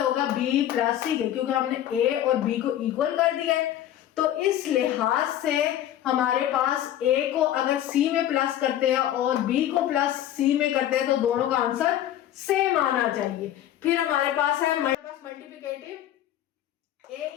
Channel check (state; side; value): quieter; right; 12.0 dB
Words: b प्लस c के, क्योंकि हमने a और b को इक्वल कर दिया है। तो इस लिहाज से हमारे पास a को अगर c में प्लस करते हैं और b को प्लस c में करते हैं तो दोनों का आंसर सेम आना चाहिए। फिर हमारे पास है multiplicative, a